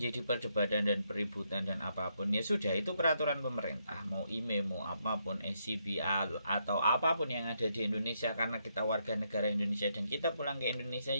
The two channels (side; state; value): both; inverted; correlation -0.77